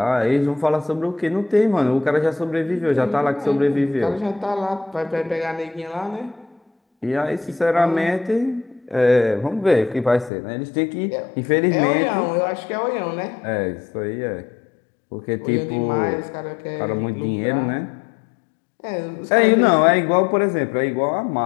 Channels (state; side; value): drops out; right; at 10.3 s